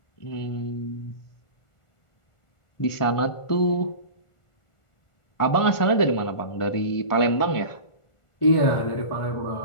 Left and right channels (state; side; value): late; right; 1.4 ms